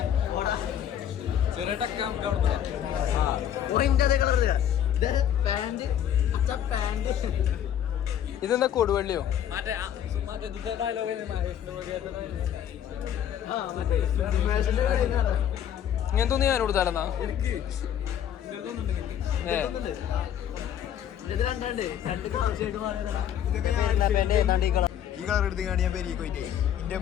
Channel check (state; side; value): quieter; right; 9.9 dB